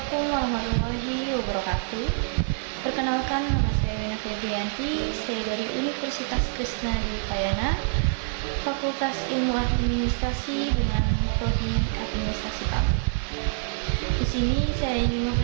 warahmatullahi wabarakatuh. Perkenalkan, nama saya Wina Febrianti. Saya dari Universitas Krishna Dwi Payana, Fakultas Ilmu Administrasi dengan Prodi Administrasi Publik. Di sini saya ingin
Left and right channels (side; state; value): left; silent; 61 dB below the other